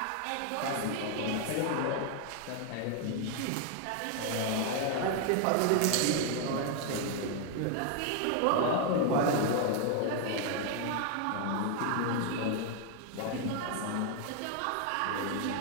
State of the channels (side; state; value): both; different; correlation 0.00